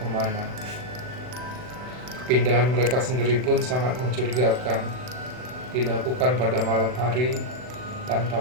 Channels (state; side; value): late; left; 40 ms